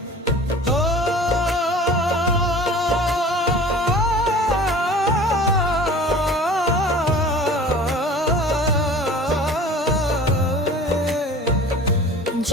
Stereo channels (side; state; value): both; normal; correlation 0.43